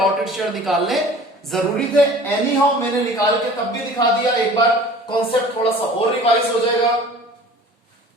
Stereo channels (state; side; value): normal; both; correlation 0.45